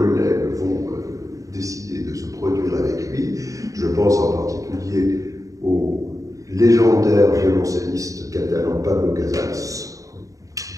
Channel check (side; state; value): left; late; 0.16 ms